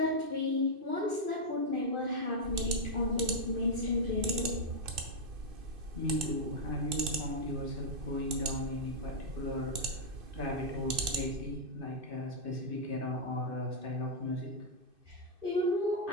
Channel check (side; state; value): left; late; 2.6 ms